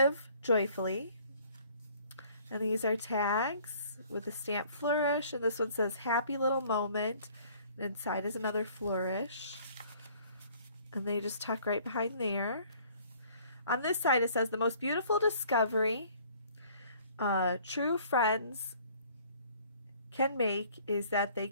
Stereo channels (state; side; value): inverted; both; correlation -0.56